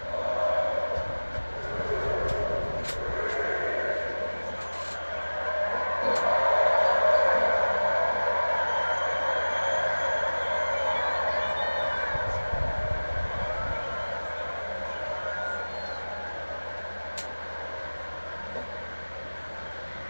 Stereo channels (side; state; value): both; inverted; correlation -1.00